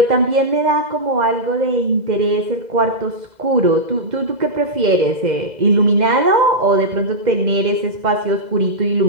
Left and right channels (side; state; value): left; late; 2.0 ms